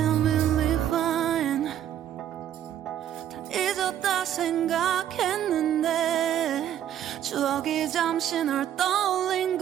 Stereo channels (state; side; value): quieter; left; 10.7 dB